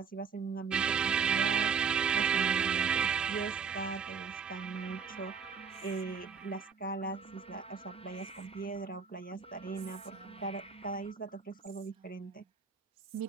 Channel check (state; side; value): quieter; left; 6.2 dB